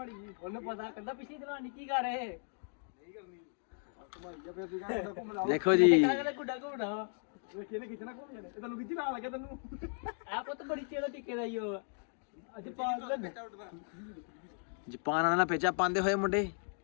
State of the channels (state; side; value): silent; right; 54 dB below the other